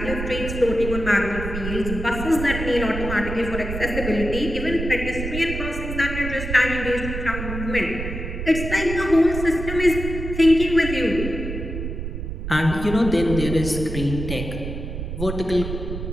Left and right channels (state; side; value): noise; right; rumble, 6 dB below the sound